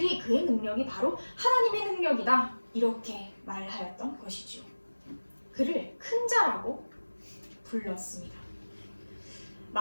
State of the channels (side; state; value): both; inverted; correlation -1.00